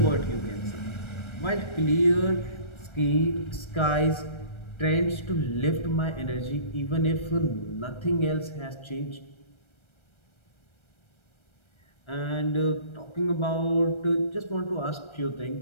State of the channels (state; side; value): late; right; 1.3 ms